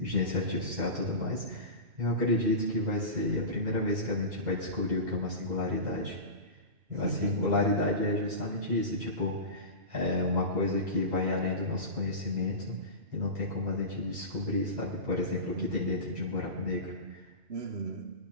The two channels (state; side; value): late; left; 2.6 ms